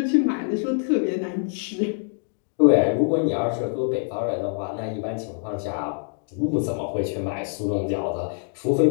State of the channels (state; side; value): silent; right; 58 dB below the other